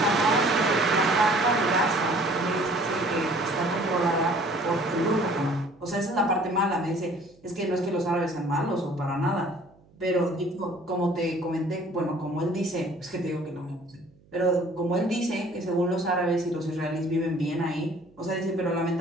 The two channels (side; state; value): right; noise; hum, 30 dB below the sound